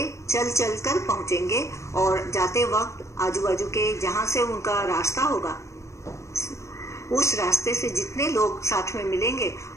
चल चल कर पहुंचेंगे और जाते वक्त आजू बाजू के जहां से उनका रास्ता होगा उस रास्ते से जितने लोग साथ में मिलेंगे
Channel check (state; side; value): late; right; 0.14 ms